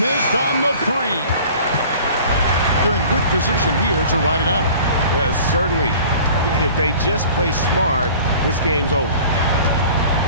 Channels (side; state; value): both; inverted; correlation -0.46